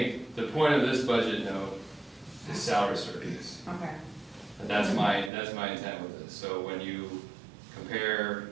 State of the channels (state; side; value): drops out; left; at 5.3 s